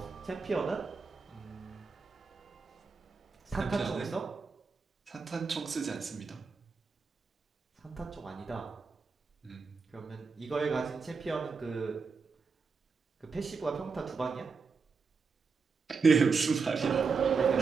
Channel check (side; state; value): left; quieter; 4.9 dB